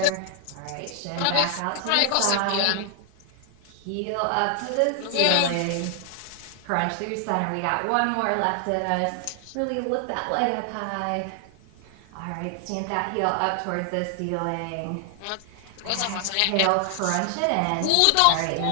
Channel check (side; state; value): both; different; correlation 0.00